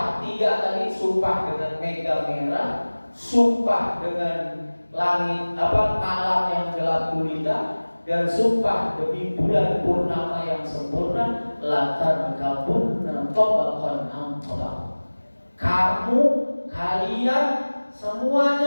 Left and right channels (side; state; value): both; inverted; correlation -1.00